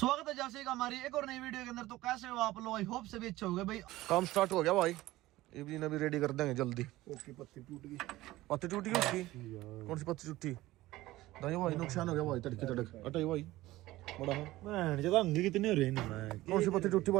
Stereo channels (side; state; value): left; quieter; 17.3 dB